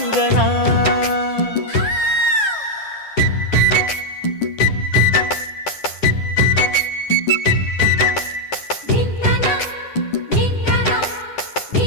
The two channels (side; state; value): right; late; 10 ms